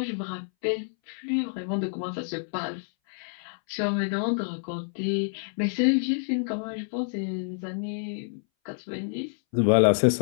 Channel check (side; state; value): right; silent; 59 dB below the other